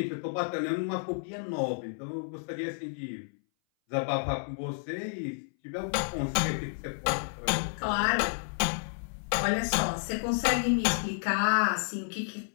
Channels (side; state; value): right; silent; 57 dB below the other